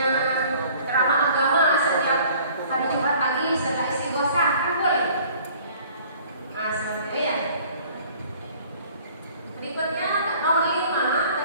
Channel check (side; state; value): both; inverted; correlation -0.53